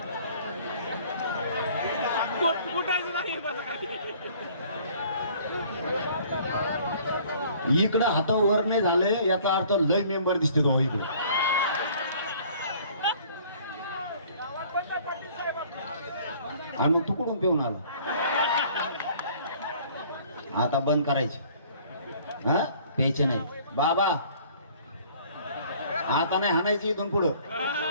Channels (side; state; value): both; inverted; correlation -0.54